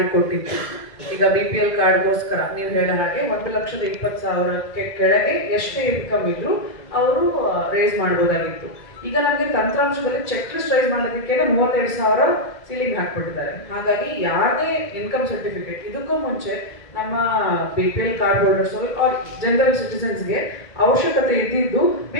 ಈಗ BPL ಕಾರ್ಡ್ಗೋಸ್ಕರ ನೀವು ಹೇಳೋ ಹಾಗೆ 1,20,000 ಕೆಳಗೆ ಎಷ್ಟೇ ಇನ್ಕಮ್ ಇದ್ರು ಅವರು ರೇಸ್ ಮಾಡ್ಬೋದಾಗಿತ್ತು. ಈಗ ನಮಗೆ ತಂತ್ರಾಂಶದಲ್ಲಿ ಚೆಕ್ ಲಿಸ್ಟ್ ರೈಸ್ ಮಾಡೋದಕ್ಕೆ 37,000 ಸೀಲಿಂಗ್ ಹಾಕ್ಬಿಟ್ಟಿದ್ದಾರೆ. ಹಾಗಾಗಿ ಯಾರದೇ ಇನ್ಕಮ್ ಸರ್ಟಿಫಿಕೇಟ್ ಇದಕ್ಕೂ ಮುಂಚೆ ನಮ್ಮ BPL card holders are general ಸಿಟಿಸನ್ಸ್ಗೆ ಅವಶ್ಯಕತೆ ಇದ್ದಿದ್ದು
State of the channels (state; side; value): late; right; 2.0 ms